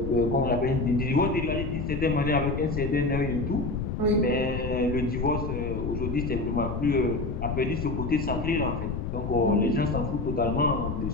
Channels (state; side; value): noise; left; rumble, 4 dB below the sound